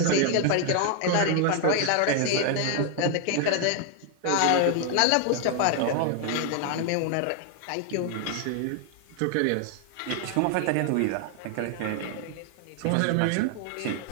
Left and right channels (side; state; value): both; different; correlation 0.00